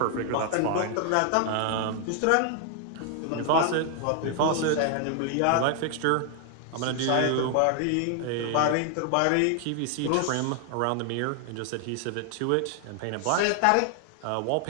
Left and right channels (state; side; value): different; both; correlation 0.00